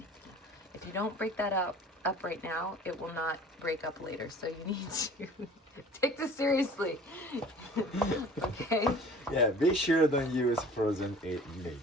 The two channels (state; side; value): normal; both; correlation 0.46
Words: right now, it will not break up later. So you need to take this seriously. Okay? Yeah, be sure don't use frozen meat.